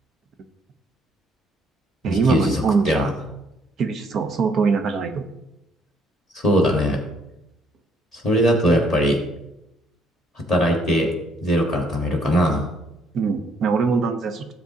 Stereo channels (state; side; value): normal; both; correlation 0.68